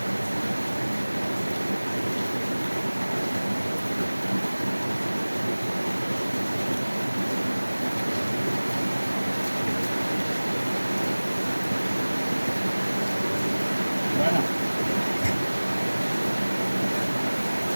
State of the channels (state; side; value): inverted; both; correlation -1.00